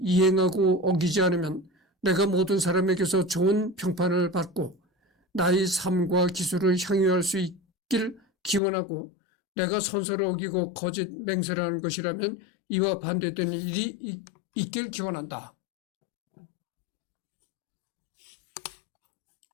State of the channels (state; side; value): drops out; right; at 8.6 s